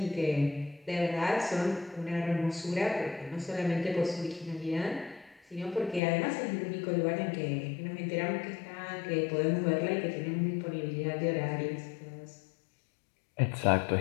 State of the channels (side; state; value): right; drops out; at 6.0 s